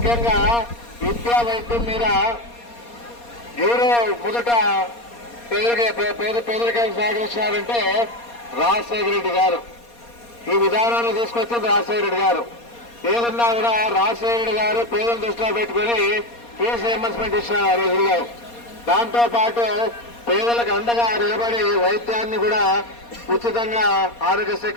విద్యా వైద్యం మీద ఎవరు మొదట పేదరికానికి సహకరించినారంటే రాజశేఖర రెడ్డి గారు. ఈ విధానాన్ని తీసుకొచ్చింది రాజశేఖర రెడ్డి గారు. ఏదన్నా కూడా రాజశేఖర రెడ్డి గారు పేదలను దృష్టిలో పెట్టుకుని ఫీజు రియంబర్స్మెంట్ ఇచ్చినారు ఆ రోజుల్లో. దాంతో పాటు పేదలకు అండగా నిలబడి వైద్యాన్ని కూడా ఉచితంగా ఆరోగ్యశ్రీ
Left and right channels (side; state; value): right; late; 4.2 ms